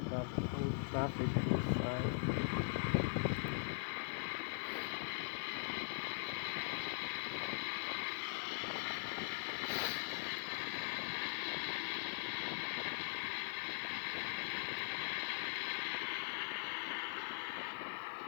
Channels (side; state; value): right; silent; digital silence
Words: have all traffic inside.